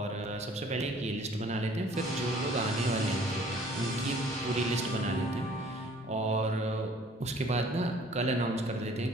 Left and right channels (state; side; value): normal; both; correlation 0.54